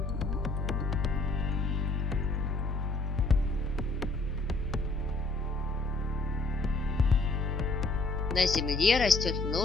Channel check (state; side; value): quieter; right; 3.3 dB